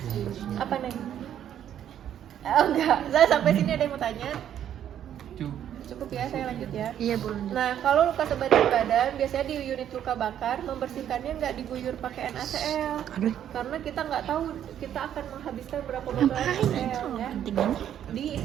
Apa nih? Oh enggak, saya sampai sini ada yang mau tanya? Cukup ya, saya lanjut ya. Iya, boleh. Nah, kalau luka sebagian badan, biasanya di unit luka bakar, membersihkannya nggak diguyur pakai NaCl. Karena kita nggak tahu kita akan menghabiskan berapa botol NaCl ya.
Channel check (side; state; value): left; quieter; 10.2 dB